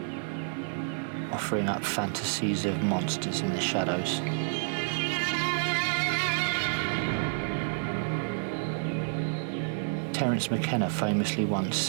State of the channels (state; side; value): silent; left; digital silence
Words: offering up fantasies of monsters in the shadows. Terence McKenna famously once